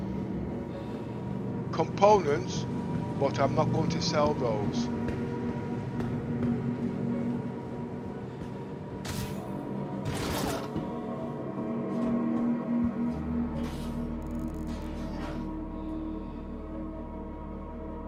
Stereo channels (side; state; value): both; identical; correlation 1.00